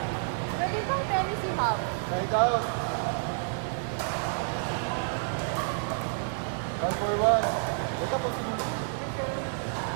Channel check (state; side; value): silent; left; digital silence